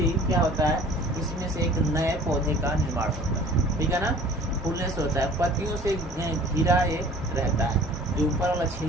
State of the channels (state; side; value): normal; both; correlation 0.48